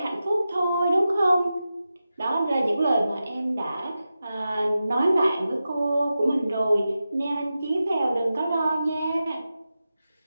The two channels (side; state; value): both; inverted; correlation -0.92